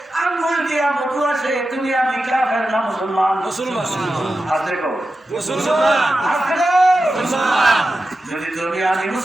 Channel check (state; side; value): normal; both; correlation 0.92